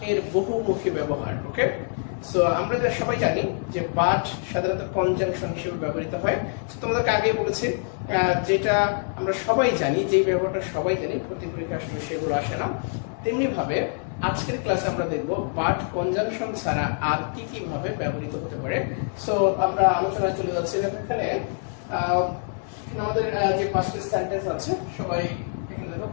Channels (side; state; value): right; silent; 59 dB below the other